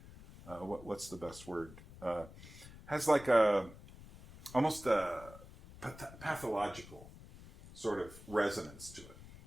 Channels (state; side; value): noise; left; rumble, 17 dB below the sound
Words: what's the best word? Has like almost a pathological sort of resonance to it.